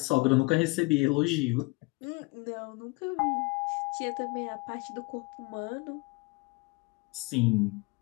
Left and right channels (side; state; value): right; quieter; 26.3 dB